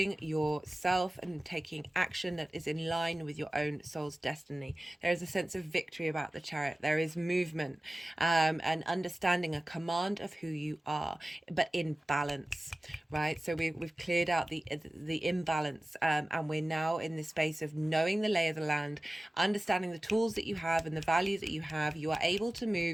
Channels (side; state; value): both; normal; correlation 0.97